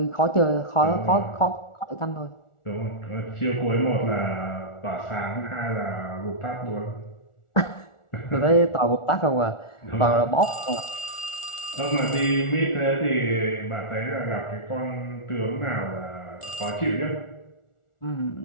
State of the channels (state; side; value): late; right; 1.4 ms